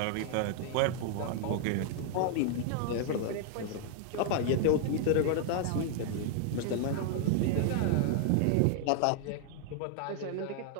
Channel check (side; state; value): both; different; correlation 0.00